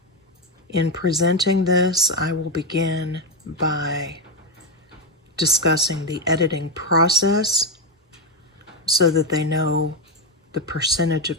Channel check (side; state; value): both; normal; correlation 0.08